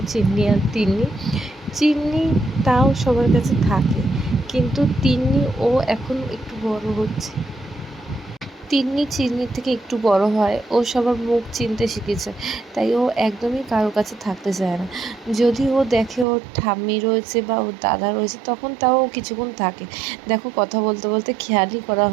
চিন্নি আর তিন্নি। চিন্নি তাও সবার কাছে থাকে, কিন্তু তিন্নি ও এখন একটু বড় হচ্ছে। তিন্নি চিন্নির থেকে একটু বড় হয়, ও সবার মুখ চিনতে শিখেছে, তাই ও একদমই কারো কাছে থাকতে চায় না। যদি ও দেখে ওর ঠাম্মি রয়েছে বা ওর দাদা রয়েছে তখন তাও ও কিছুক্ষণ থাকে। দেখো কথা বলতে বলতে খেয়ালই করা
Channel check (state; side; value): drops out; left; at 16.2 s